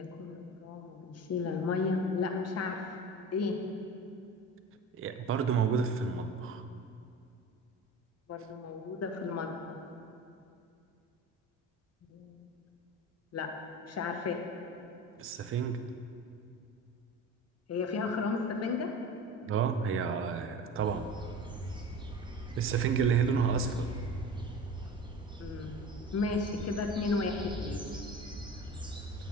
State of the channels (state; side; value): normal; both; correlation 0.34